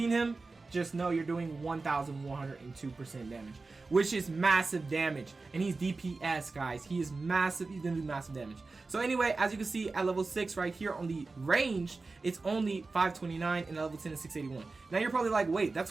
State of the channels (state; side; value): quieter; left; 3.8 dB